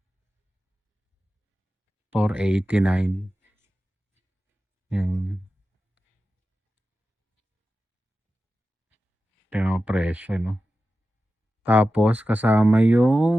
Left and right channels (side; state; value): both; normal; correlation 0.93